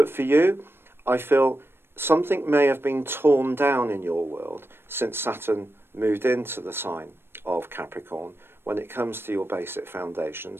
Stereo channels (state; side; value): late; left; 0.11 ms